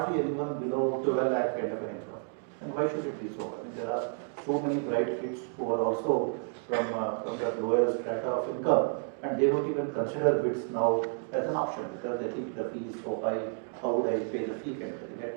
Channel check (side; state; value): left; silent; 57 dB below the other